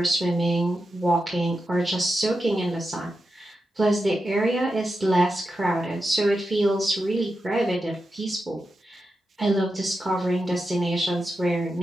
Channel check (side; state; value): both; normal; correlation 0.89